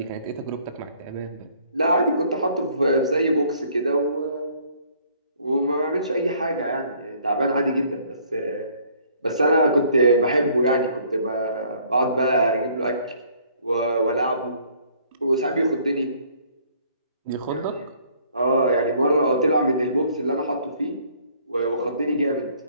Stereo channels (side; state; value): both; inverted; correlation -0.60